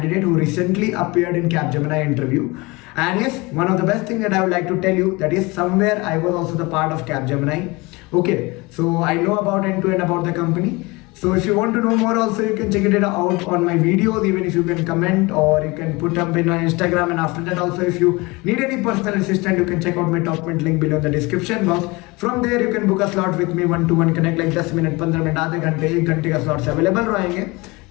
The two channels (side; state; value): right; quieter; 24.3 dB